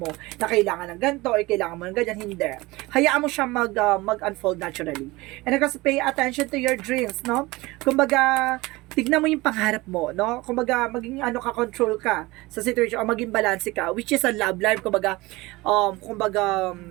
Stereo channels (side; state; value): left; quieter; 21.4 dB